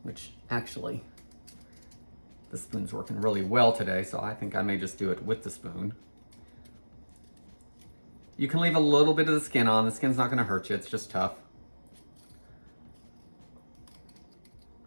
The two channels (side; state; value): both; inverted; correlation -1.00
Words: Which actually, the spoon's working really well today, so I think I may just do it with the spoon. You can leave a little bit of the skin on. The skin's not going to hurt you, it's just tough.